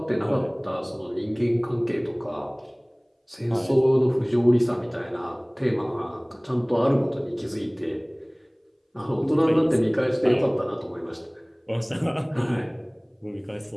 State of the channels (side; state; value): both; identical; correlation 1.00